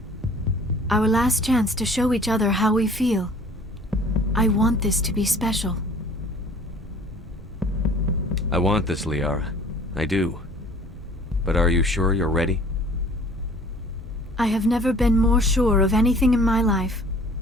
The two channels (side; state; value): both; normal; correlation 0.51